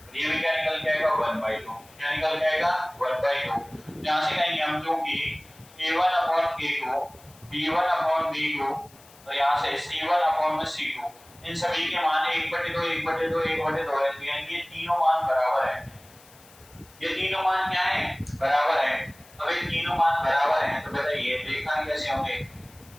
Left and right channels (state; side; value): noise; left; hiss, 25 dB below the sound